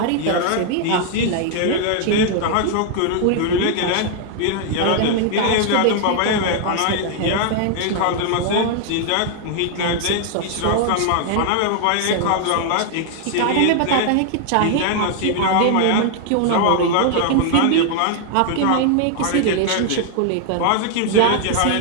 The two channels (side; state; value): both; different; correlation 0.00